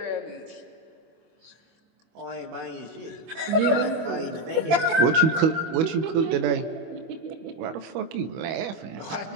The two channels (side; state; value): left; late; 25 ms